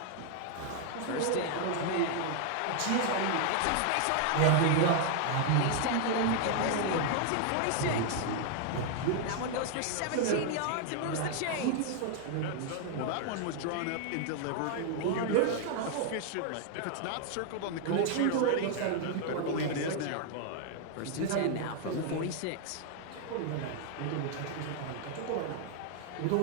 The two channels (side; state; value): both; different; correlation 0.00